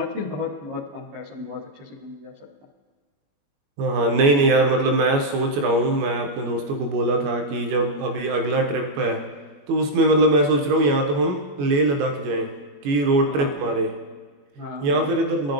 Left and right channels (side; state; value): left; late; 21 ms